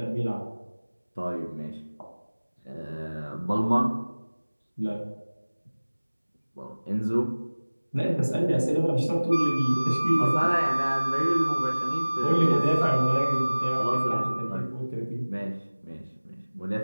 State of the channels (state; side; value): inverted; both; correlation -1.00